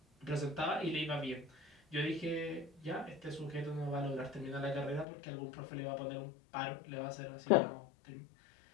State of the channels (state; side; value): drops out; right; at 5.1 s